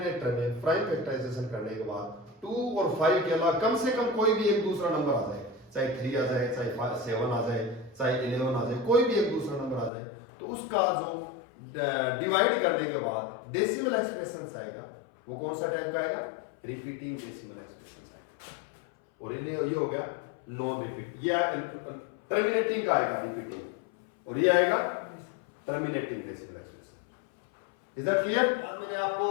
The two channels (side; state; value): right; drops out; at 9.9 s